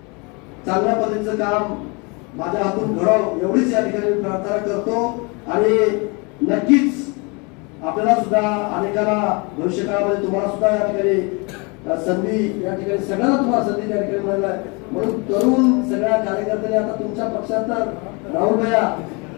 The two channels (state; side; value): quieter; right; 30.1 dB